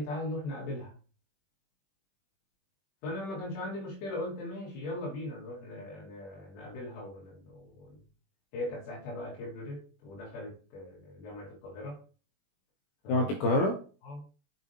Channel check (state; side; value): late; right; 21 ms